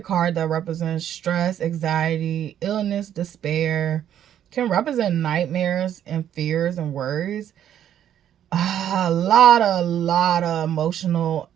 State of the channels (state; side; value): quieter; left; 10.3 dB